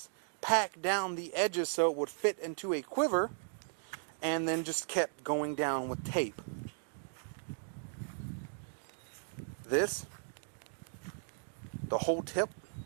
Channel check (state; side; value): silent; left; digital silence